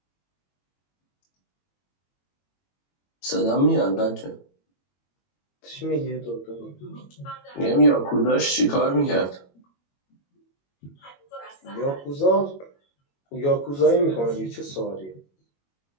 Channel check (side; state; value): right; late; 21 ms